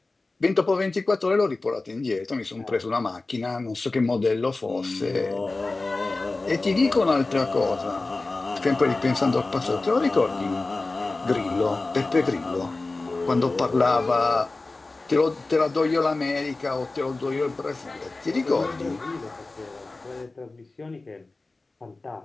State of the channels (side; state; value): right; quieter; 3.3 dB